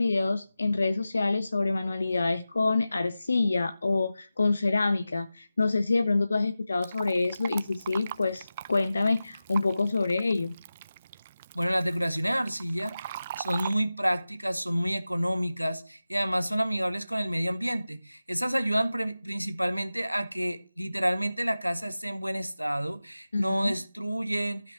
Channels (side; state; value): both; inverted; correlation -0.94